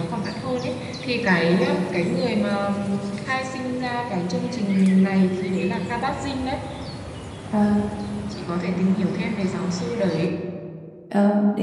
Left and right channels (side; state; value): both; identical; correlation 1.00